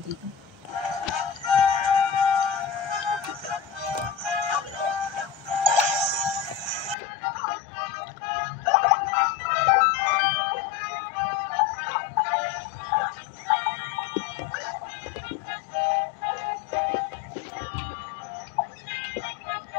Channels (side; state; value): right; drops out; at 7.0 s